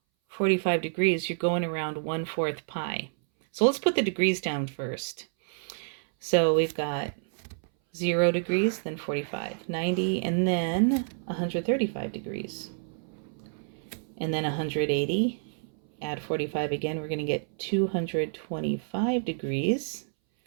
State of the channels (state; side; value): silent; left; 59 dB below the other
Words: 45 degrees, you're going around 1/4 pi. So let's put the degrees down first. So we've got 0 degrees, then 45, 90, and then 135 degrees. And then 180, add 45 again, we're going to get 225 degrees,